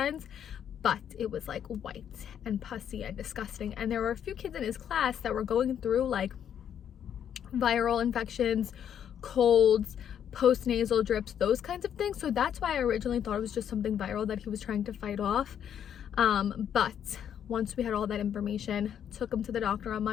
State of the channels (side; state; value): right; quieter; 9.1 dB